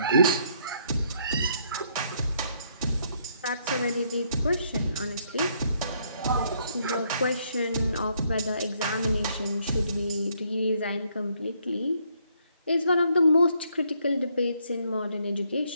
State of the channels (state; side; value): inverted; both; correlation -0.71